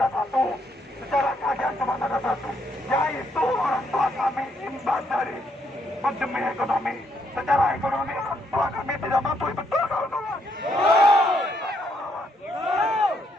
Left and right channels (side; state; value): both; normal; correlation 0.73